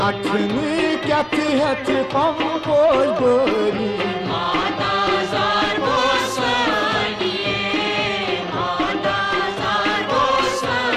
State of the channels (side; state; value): both; identical; correlation 1.00